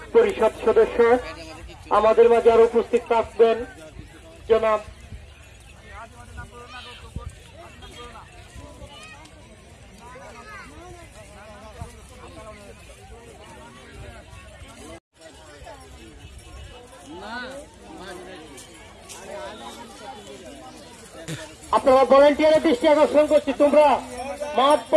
পরিষদ সদস্য আমাদের মাঝে আরো উপস্থিত থাকবেন জনাব আপনারা ভলেন্টিয়ারের দৃষ্টি আকর্ষণ করছি, তোমরা মাঠ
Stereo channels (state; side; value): identical; both; correlation 1.00